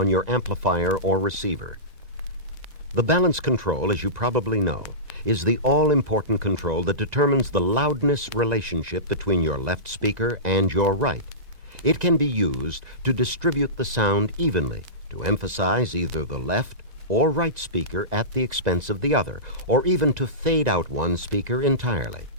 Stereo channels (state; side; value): late; left; 1.9 ms